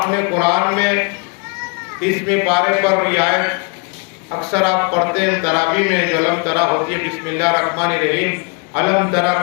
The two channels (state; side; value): quieter; right; 35.8 dB